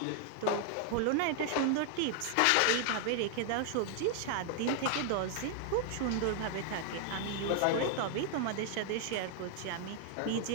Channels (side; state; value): both; different; correlation 0.00